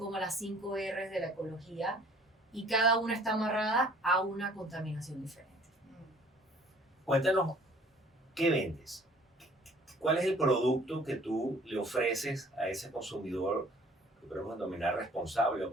las 5 R's de la ecología. Y cada una está amarrada a una contaminación diferente. Cuéntanos, ¿qué vendes? ¿Cuál es el producto que tú le ofreces a ese consumidor que podemos denominar responsable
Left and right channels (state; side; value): normal; both; correlation 0.55